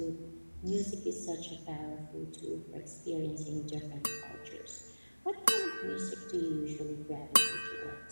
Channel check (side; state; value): both; inverted; correlation -1.00